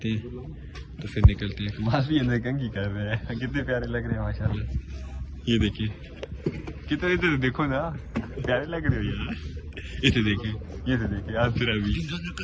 हैं, तो फिर निकलते हैं। कमाल भी अंदर कंघी कर रहे हैं, कितने प्यारे लग रहे हैं माशाल्लाह। ये देखिए कितने, इधर देखो ना, प्यारे लग रहे हो यार। इसे देखिए, ये से देखिए, आज फिर अभी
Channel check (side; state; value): both; identical; correlation 1.00